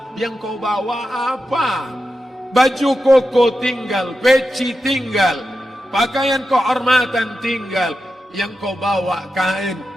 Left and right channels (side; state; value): both; normal; correlation 0.90